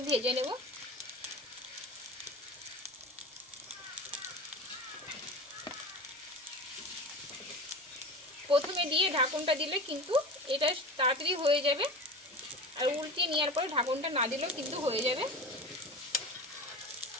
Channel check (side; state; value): both; normal; correlation 0.31